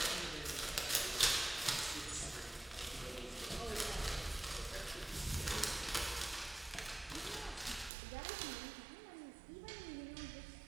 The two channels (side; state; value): left; drops out; at 7.9 s